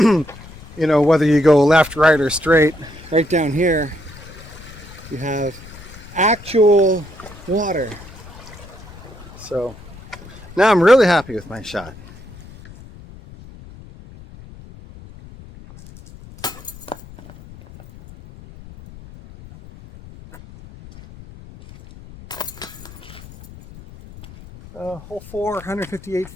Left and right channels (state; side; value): noise; left; rumble, 18 dB below the sound